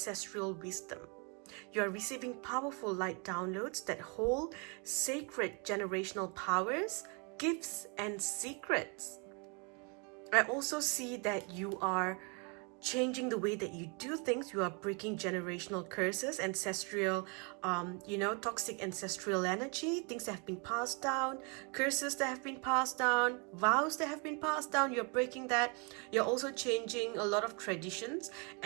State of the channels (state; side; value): quieter; left; 34.3 dB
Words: wisdom. You are receiving powerful light downloads that hold sacred generational powers, gifts, and secrets. I also see that you are changing the way that you do things. You are breaking generational curses, ancestral, toxic ancestral energy, things that have been passed down, curses that have been passed down, vows that have been passed down. You're breaking that. You're also changing a lot of traditions,